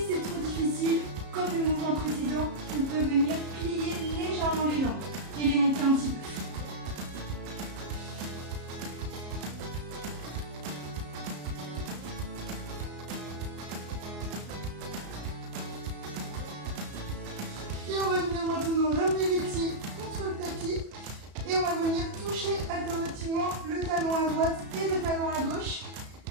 c'est trop difficile, comme le mouvement précédent, on peut venir plier légèrement les jambes et les monter un petit peu. Et on va venir maintenant ramener les pieds contre le tapis et on va venir toucher alternativement le talon à droite et le talon à gauche.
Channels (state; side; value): late; left; 34 ms